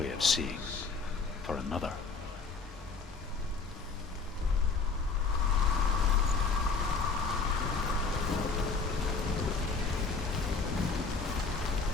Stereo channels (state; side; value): quieter; right; 4.6 dB